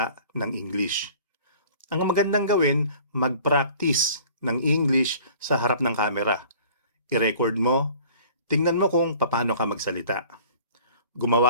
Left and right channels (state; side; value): inverted; both; correlation -0.49